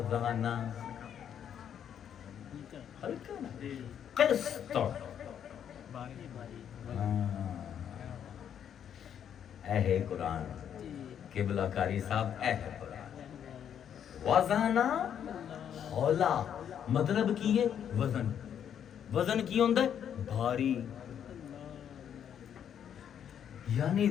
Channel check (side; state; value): right; quieter; 9.0 dB